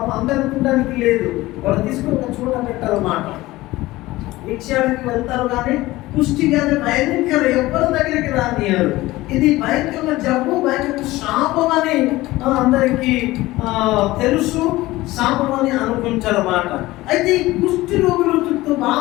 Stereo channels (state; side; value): quieter; right; 18.4 dB